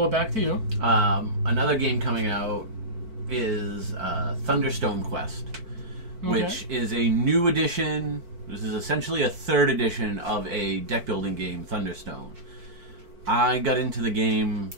back to you. Another game coming out is Thunderstone Quest, which is a new edition This is essentially a 3rd edition of a deck building game, Thunderstone. I got into the game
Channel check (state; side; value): late; left; 4.5 ms